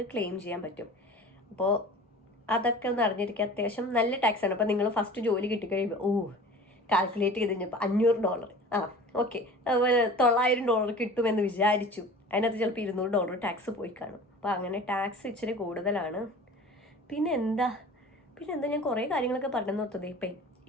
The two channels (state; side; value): normal; both; correlation 0.40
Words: ക്ലെയിം ചെയ്യാൻ പറ്റും. അപ്പോൾ അതൊക്കെ ഒന്ന് അറിഞ്ഞിരിക്കുക. അത്യാവശ്യം നല്ല ടാക്സാണ്. അപ്പോൾ നിങ്ങൾ ഫസ്റ്റ് ജോലി കിട്ടിക്കഴിയുമ്പോൾ കാൽക്കുലേറ്റ് ചെയ്ത് കഴിഞ്ഞപ്പോൾ $500, ഓക്കെ $900 കിട്ടുമെന്ന് വിചാരിച്ചു. അതിനകത്ത് ചിലപ്പോൾ $200 ടാക്സ് പോയി കാണും. അപ്പോൾ അങ്ങനെ ടാക്സ് ഇച്ചിരി കൂടുതലാണ്. പിന്നെ എന്താ ഞാൻ കുറേ കാര്യങ്ങളൊക്കെ പറഞ്ഞു നിർത്തത്. ഇപ്പം